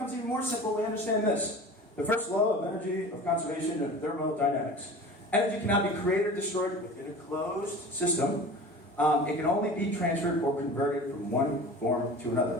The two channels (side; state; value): both; normal; correlation 0.38